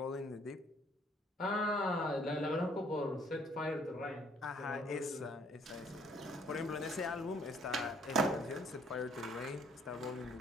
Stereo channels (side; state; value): both; normal; correlation 0.62